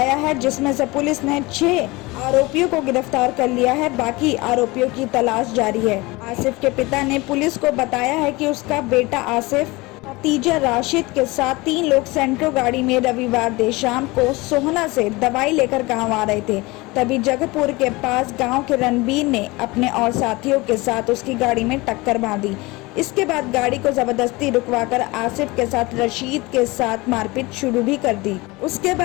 है, जिसमें से पुलिस ने 6 आरोपियों को गिरफ्तार कर लिया है। बाकी आरोपियों की तलाश जारी है। आसिफ के पिता ने पुलिस को बताया है कि उसका बेटा आसिफ भतीजा राशिद के साथ 3 लोग सेंट्रो गाड़ी में रविवार देर शाम को सोहना से दवाई लेकर गांव आ रहे थे। तभी जगहपुर के पास गांव के रणबीर ने अपने और साथियों के साथ उसकी गाड़ी में टक्कर मार दी। इसके बाद गाड़ी को जबरदस्ती रुकवाकर आसिफ के साथ रशीद के साथ मारपीट शुरू भी कर दी। उसके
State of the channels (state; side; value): quieter; right; 22.8 dB